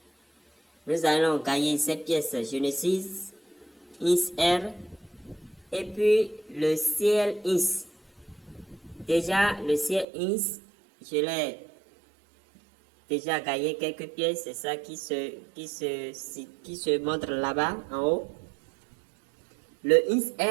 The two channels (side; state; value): left; drops out; at 10.1 s